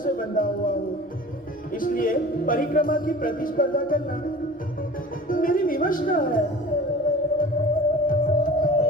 बंधा हुआ हूँ, इसलिए परिक्रमा की प्रतिस्पर्धा करना मेरी विवश न है।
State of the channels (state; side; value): normal; both; correlation 0.41